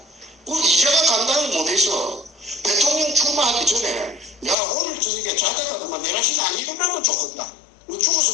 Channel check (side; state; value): right; drops out; at 4.5 s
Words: 우리 이자가 감당을 못해서 대통령 출마하기 전에 야 오늘 저녁에 자다가도 내라시는 안 일어나면 좋겠다.